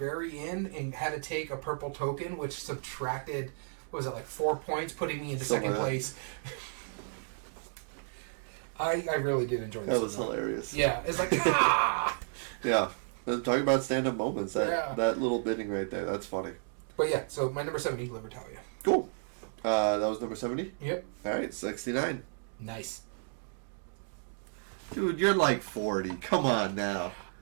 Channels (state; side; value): silent; left; digital silence